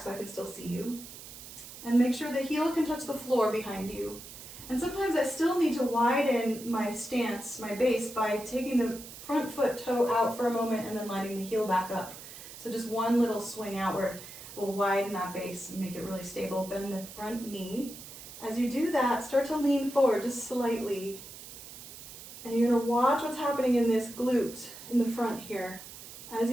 I can still see you. And make sure the heel can touch the floor behind you. And sometimes I still need to widen my stance, my base, by taking the front foot toe out for a moment and then lining the heel back up. So just one little swing outward will widen that base and make it really stable. Bend the front knee. As you do that, start to lean forward just slightly. And you're gonna watch what's happening in this glute in the front here. As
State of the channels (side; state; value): right; noise; hiss, 14 dB below the sound